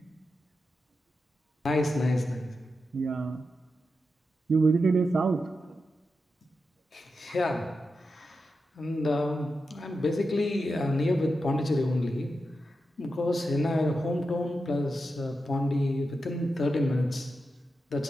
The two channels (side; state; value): both; normal; correlation 0.89